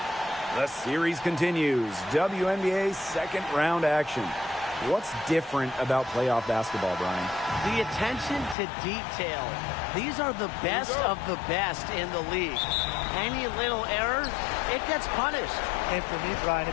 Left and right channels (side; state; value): right; drops out; at 8.6 s